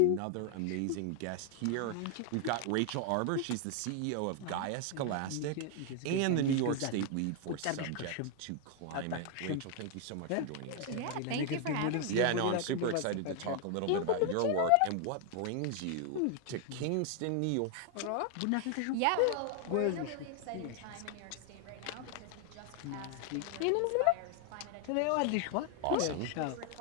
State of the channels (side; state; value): both; different; correlation 0.00